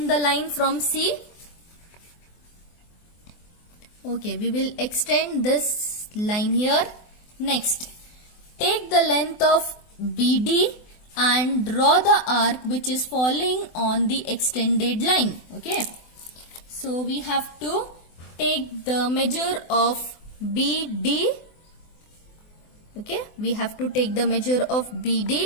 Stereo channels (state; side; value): late; right; 24 ms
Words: the line from C. Okay, we will extend this line here. Next, take the length of BD and draw the arc which is falling on the extended line. Okay, so we have to take the measure of BD. Okay, we have to take the measure of